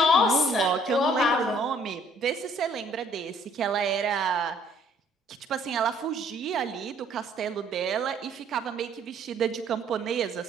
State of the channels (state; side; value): normal; both; correlation 0.61